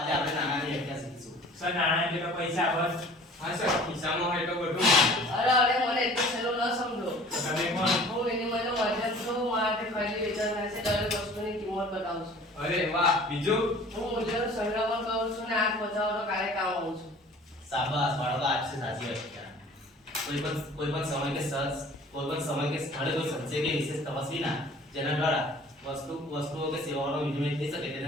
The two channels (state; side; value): normal; both; correlation 0.48